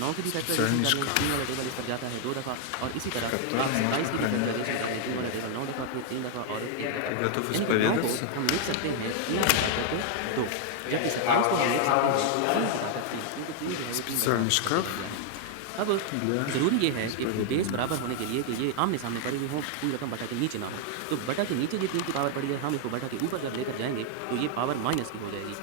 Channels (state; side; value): different; both; correlation 0.00